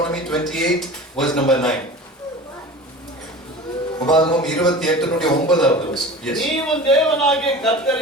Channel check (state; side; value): normal; both; correlation 0.36